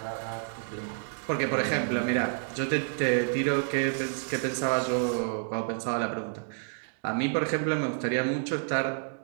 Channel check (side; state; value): left; silent; digital silence